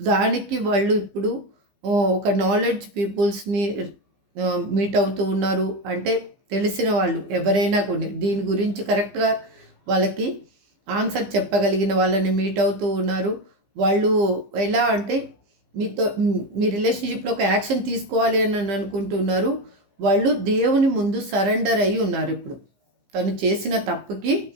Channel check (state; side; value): late; left; 15 ms